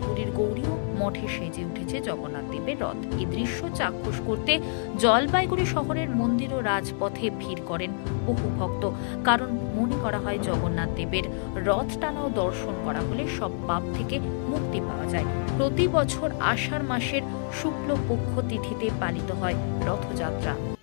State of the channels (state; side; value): silent; right; digital silence